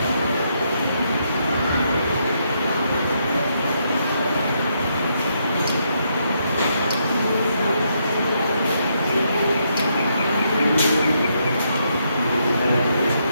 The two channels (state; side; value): inverted; both; correlation -0.77